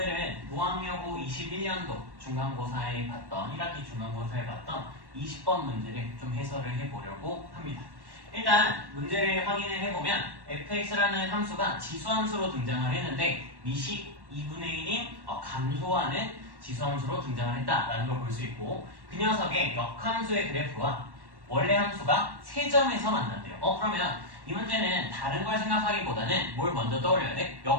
무학여고 21년도 중간고사에 봤던 1학기 중간고사에 봤던 20번 문제를 좀 해설을 해보려고 합니다. 일단 문제를 확인을 해보면 fx라는 함수가 지수함수로 등장을 했는데 미식 2분의 1인 감소하는 지수함수로 등장을 했다라는 걸 볼 수 있고, 그 녀석의 역함수의 그래프와 원래 함수가 3점에서 만난대요. 그러면 이 문제는 다른 걸 생각하기보다는 뭘 먼저 떠올려야 돼?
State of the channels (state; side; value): late; left; 1.1 ms